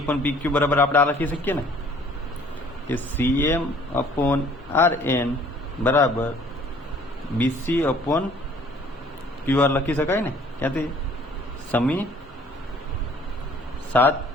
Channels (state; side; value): normal; both; correlation 0.55